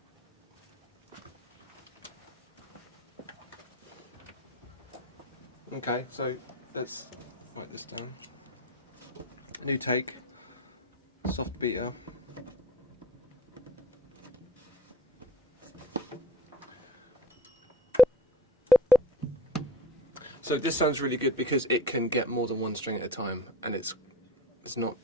Okay, so let's write this down. New take, soft beater. So this sounds really good because it can get more than one string at a time, and it's not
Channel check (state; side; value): normal; both; correlation 0.36